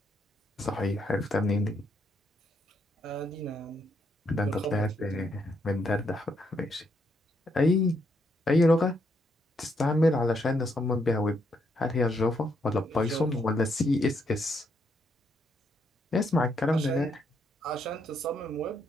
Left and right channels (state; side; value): normal; both; correlation 0.75